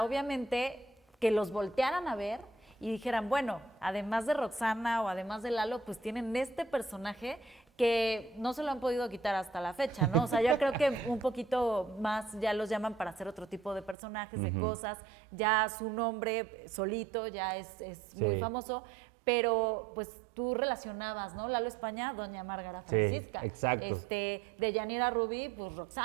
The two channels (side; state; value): left; drops out; at 14.0 s